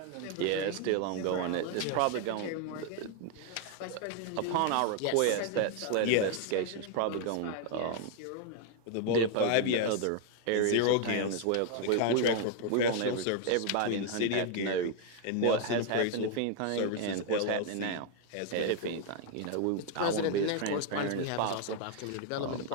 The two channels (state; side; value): different; both; correlation 0.00